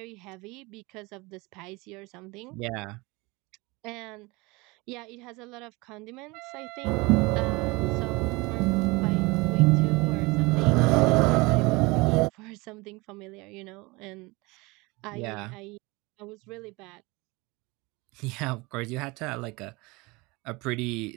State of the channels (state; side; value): quieter; left; 24.6 dB